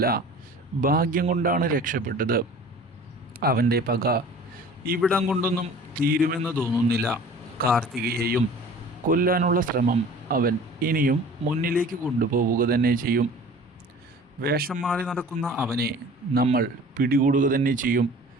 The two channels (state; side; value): normal; both; correlation 0.44